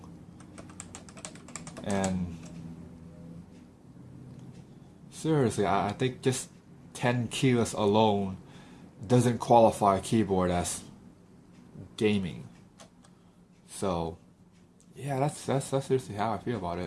And seriously, I think just 10 keyless alone doesn't qualify a keyboard as gaming. So yeah, that's seriously how I feel about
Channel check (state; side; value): identical; both; correlation 1.00